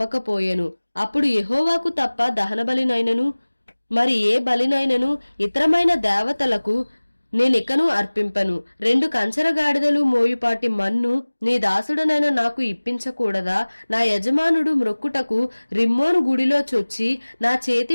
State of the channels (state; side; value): inverted; both; correlation -1.00